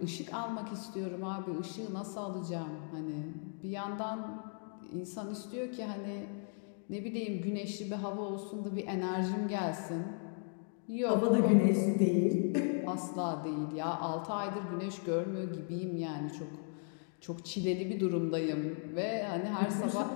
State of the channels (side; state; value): right; silent; 53 dB below the other